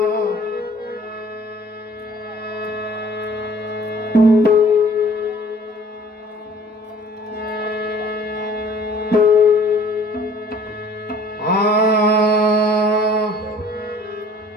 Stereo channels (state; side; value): normal; both; correlation 0.53